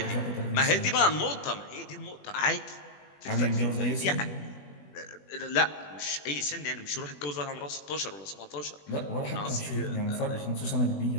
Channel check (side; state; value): right; late; 20 ms